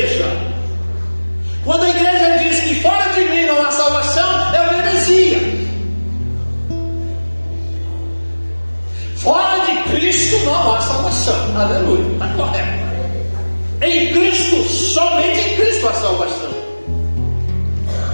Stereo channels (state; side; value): inverted; both; correlation -1.00